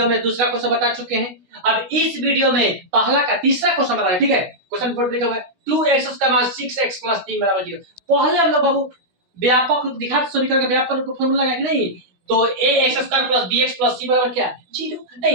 में दूसरा क्वेश्चन बता चुके हैं। अब इस वीडियो में पहला का तीसरा क्वेश्चन बता रहे हैं, ठीक है। क्वेश्चन बोर्ड लिखा हुआ है 2x का मान 6x + 3 = 0। पहले हम लोग बाबू व्यापक रूप दिखा समीकरण का व्यापक रूप का फार्मूला लगाएंगे नहीं, तो ax² + bx + c = क्या 0।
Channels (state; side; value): late; left; 16 ms